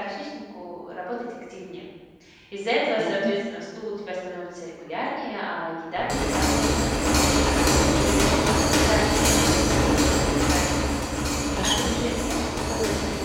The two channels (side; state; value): both; identical; correlation 1.00